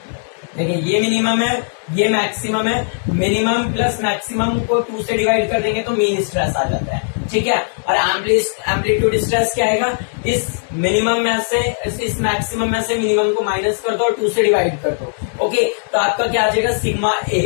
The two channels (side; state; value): right; silent; digital silence